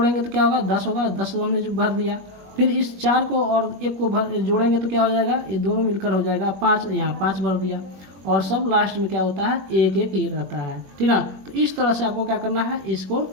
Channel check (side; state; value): left; late; 21 ms